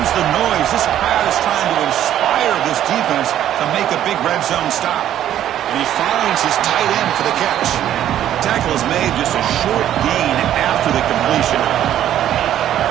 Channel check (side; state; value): left; quieter; 11.4 dB